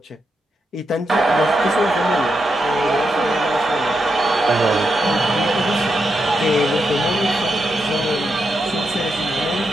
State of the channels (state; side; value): normal; both; correlation 0.84